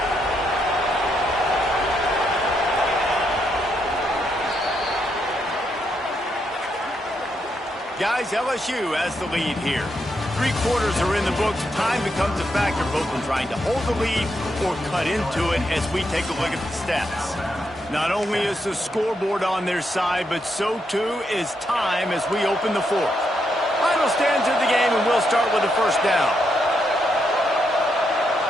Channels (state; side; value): normal; both; correlation 0.80